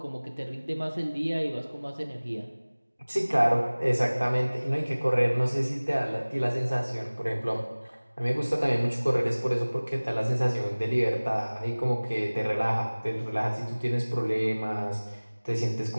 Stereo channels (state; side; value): inverted; both; correlation -1.00